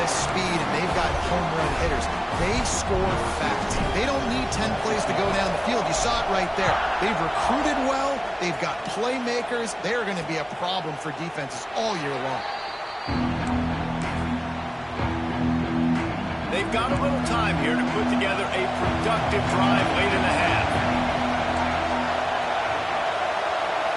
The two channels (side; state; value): both; identical; correlation 1.00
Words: of speed and they've got home run hitters. They score fast. They don't need 10 plays to go down the field. You saw it right there. They've recruited well. They've got playmakers. They're going to be a problem for defenses all year long. They've got a little time here to put together a productive drive late in the half.